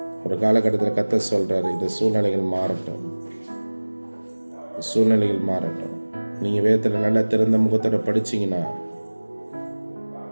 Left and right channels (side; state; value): both; inverted; correlation -1.00